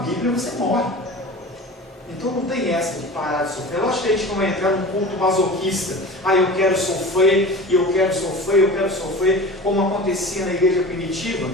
você morre. Então não tem essa de parar de sofrer. Eu acho que a gente não vai entrar num culto masoquista. Eu quero sofrer, e eu quero sofrer, eu quero sofrer, como acontecia na igreja primitiva.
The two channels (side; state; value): both; normal; correlation 0.36